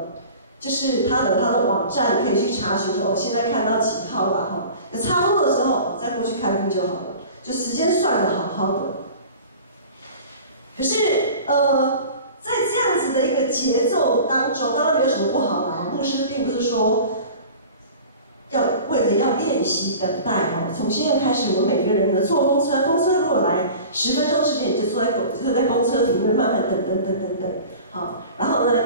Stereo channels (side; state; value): both; inverted; correlation -0.40